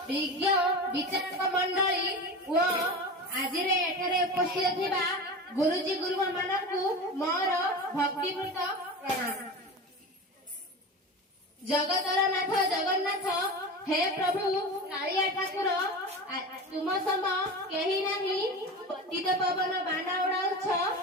विज्ञ विचारक मंडली व आज एठारे उपस्थित थिबा गुरुजी गुरुमा मानकु मोर भक्तिपूत प्रणाम। जगतर नाथ जगन्नाथ हे प्रभु कालिया ठाकुर तुम सम केही नाही पतित पवन बाण उड़ाउछ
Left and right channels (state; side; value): normal; both; correlation 0.28